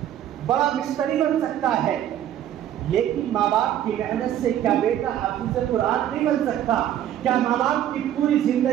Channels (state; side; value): quieter; left; 11.3 dB